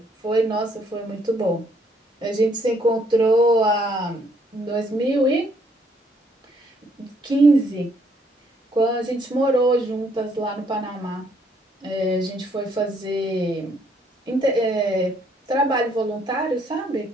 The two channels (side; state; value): both; normal; correlation 0.68